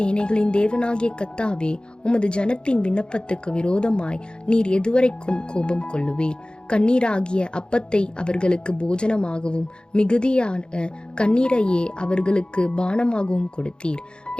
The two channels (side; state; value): right; late; 0.050 ms